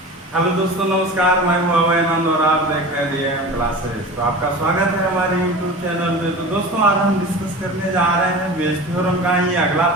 दोस्तों, नमस्कार। मैं हूं अभय आनंद और आप देख रहे हैं डीएम क्लासेस। तो आपका स्वागत है हमारे यूट्यूब चैनल में। तो दोस्तों, आज हम डिस्कस करने जा रहे हैं बेस थ्योरम का ही अगला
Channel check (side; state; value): both; normal; correlation 0.34